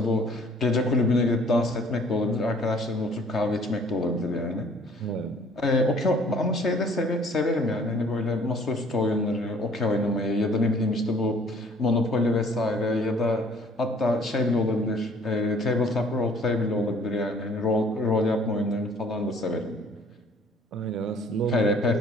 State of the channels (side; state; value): both; normal; correlation 0.56